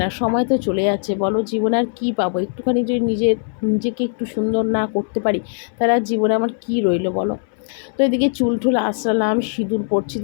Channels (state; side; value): silent; right; 60 dB below the other